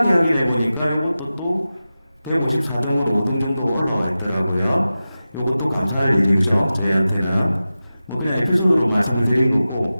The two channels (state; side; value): inverted; both; correlation -0.94